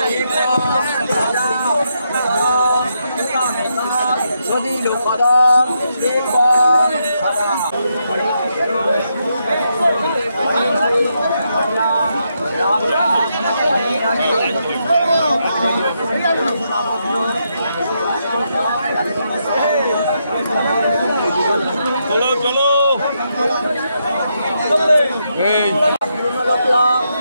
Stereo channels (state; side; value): inverted; both; correlation -0.81